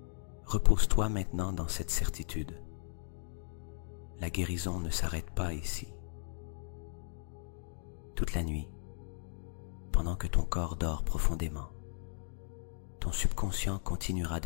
Repose-toi maintenant dans cette certitude. La guérison ne s'arrête pas ici. Toute la nuit, pendant que ton corps dort profondément, ton subconscient continuera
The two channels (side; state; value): right; silent; digital silence